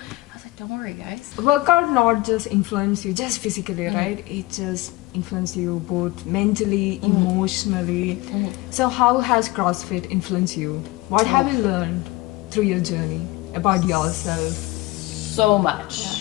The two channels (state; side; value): quieter; right; 20.3 dB